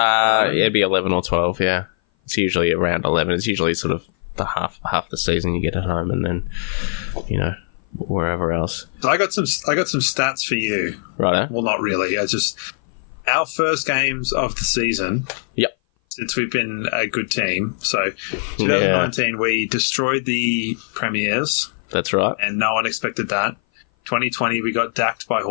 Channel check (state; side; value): silent; right; 58 dB below the other